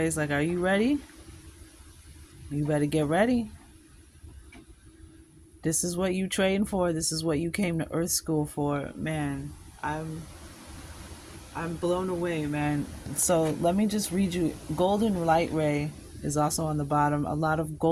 like, are you ready? You better get ready. This is what you trained for. This is what you came to Earth School for. Man, I'm blown away, man. So let me just read you. Golden light ray is also on the bottom. A lot of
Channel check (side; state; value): both; identical; correlation 1.00